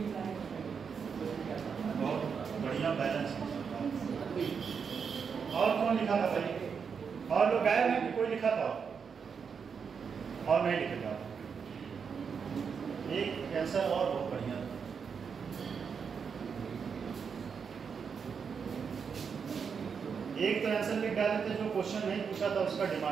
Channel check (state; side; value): quieter; left; 6.3 dB